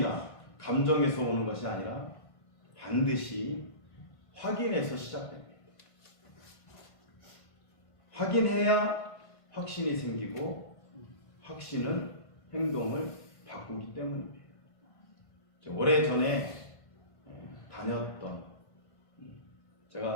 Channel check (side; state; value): right; late; 1.5 ms